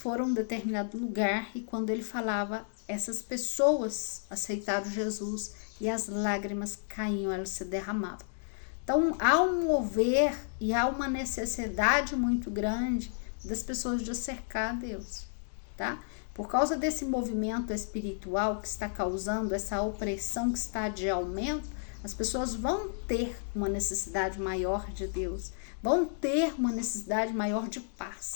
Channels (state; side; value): silent; right; digital silence